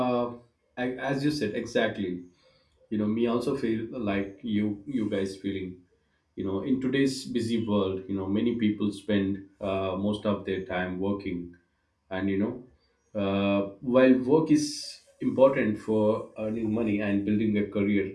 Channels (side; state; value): both; identical; correlation 1.00